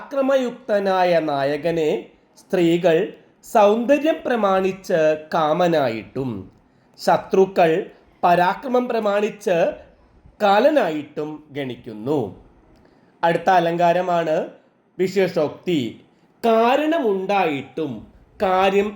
നായകനെ സ്ത്രീകൾ സൗന്ദര്യം പ്രമാണിച്ച് കാമനായിട്ടും ശത്രുക്കൾ പരാക്രമം പ്രമാണിച്ച് കാലനായിട്ടും ഗണിക്കുന്നു. അടുത്ത അലങ്കാരമാണ് വിശേഷോക്തി. കാരണമുണ്ടായിട്ടും കാര്യം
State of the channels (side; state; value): both; identical; correlation 1.00